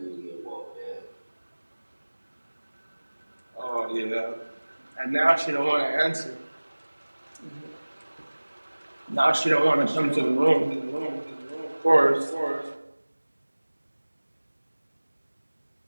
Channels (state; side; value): inverted; both; correlation -1.00